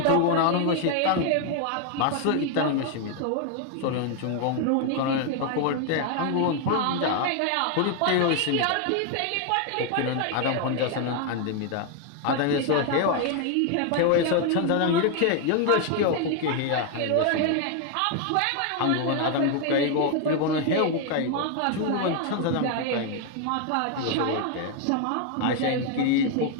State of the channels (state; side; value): different; both; correlation 0.00